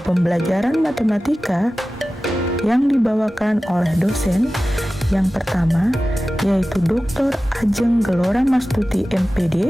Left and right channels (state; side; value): normal; both; correlation 0.95